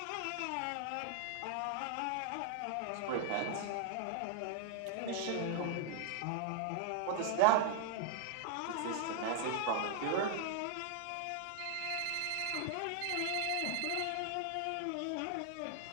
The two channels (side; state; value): both; different; correlation 0.00